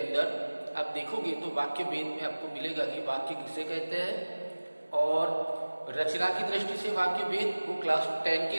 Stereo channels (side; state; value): both; inverted; correlation -1.00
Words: आप देखोगे तो वाक्य भेद में आपको मिलेगा कि वाक्य किसे कहते हैं, और रचना की दृष्टि से वाक्य भेद वो क्लास 10 के